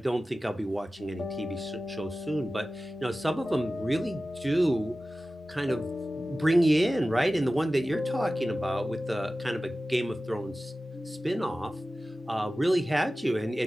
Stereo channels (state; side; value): normal; both; correlation 0.95